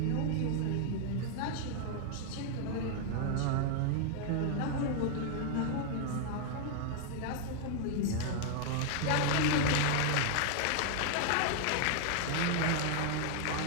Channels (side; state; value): both; different; correlation 0.00